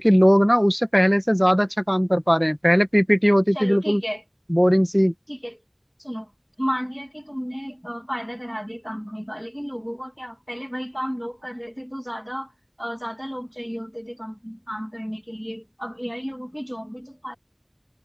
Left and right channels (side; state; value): both; identical; correlation 1.00